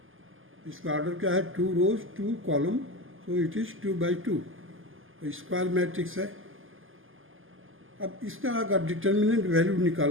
इसका ऑर्डर क्या है? 2 रोज 2 column, so it is 2x2। Square matrix है। अब इसका अगर डिटर्मिनेंट वैल्यू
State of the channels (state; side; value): late; left; 0.59 ms